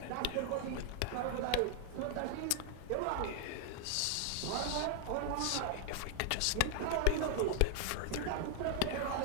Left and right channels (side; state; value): both; different; correlation 0.00